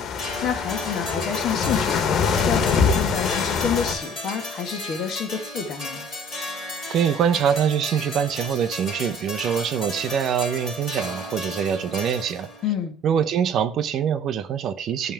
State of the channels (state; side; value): normal; both; correlation 0.51